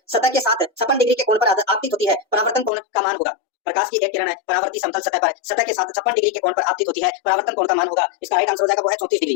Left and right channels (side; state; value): right; drops out; at 2.7 s